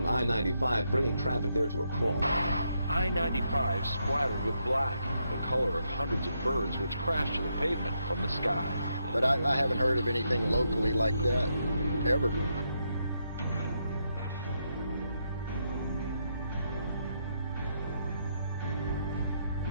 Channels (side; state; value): both; inverted; correlation -0.79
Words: I-95, bringing traffic there to a crawl. I-95 splattered with black, the color of hundreds of birds which crashed to the pavement from the sky. But I haven't heard of anything locally like that, ever.